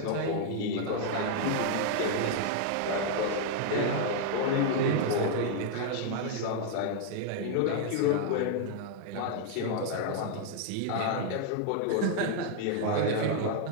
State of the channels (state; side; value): different; both; correlation 0.00